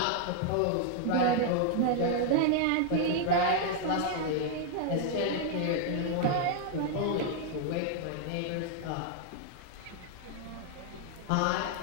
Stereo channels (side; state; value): both; different; correlation 0.00